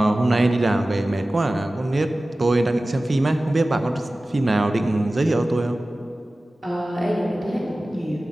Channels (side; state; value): both; normal; correlation 0.97